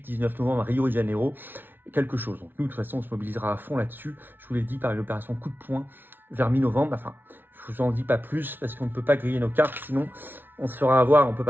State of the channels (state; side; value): late; left; 0.097 ms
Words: novembre à Rio de Janeiro, quelque chose. Donc, nous, de toute façon, on se mobilisera à fond là-dessus. Je vous l'ai dit par l'opération coup de poing vers mi-novembre. Enfin, je vous en dis pas plus parce qu'on ne peut pas griller nos cartes, sinon on se fera avoir, on ne peut